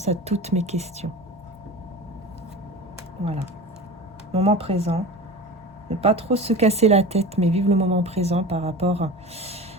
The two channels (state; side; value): normal; both; correlation 0.33